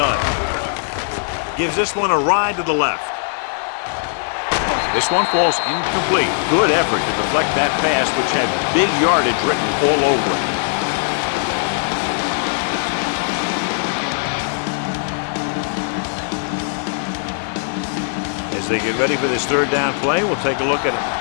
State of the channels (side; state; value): right; silent; 64 dB below the other